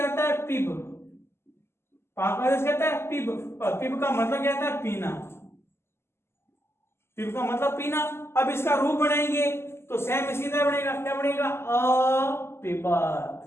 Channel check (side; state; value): right; late; 0.12 ms